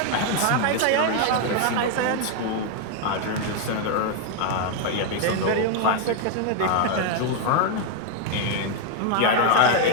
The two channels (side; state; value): both; different; correlation 0.00